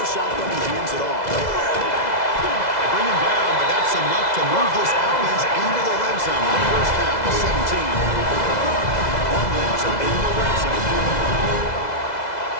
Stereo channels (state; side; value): late; right; 2.0 ms